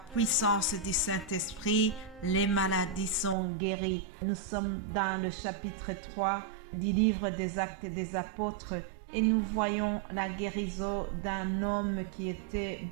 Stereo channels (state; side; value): drops out; left; at 3.4 s